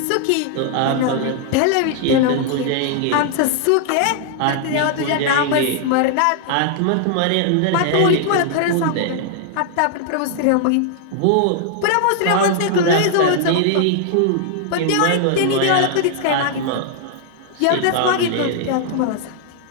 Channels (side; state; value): both; different; correlation -0.01